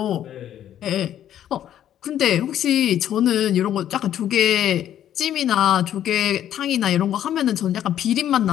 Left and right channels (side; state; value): right; quieter; 11.0 dB